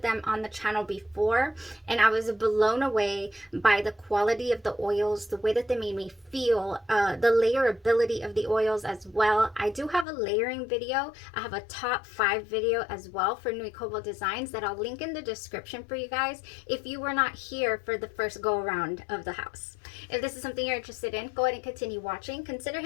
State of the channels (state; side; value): drops out; right; at 10.1 s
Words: them on the channel before and I was blown away by the quality of the oils, the way that they made me feel, the layerability of the oils as well. I do have a layering video. I have a top 5 video as well for Nui Cobalt Designs that I'll link in the description for you guys if you were not here for the first go around of the house. If this is something you're interested in, go ahead and continue watching. Consider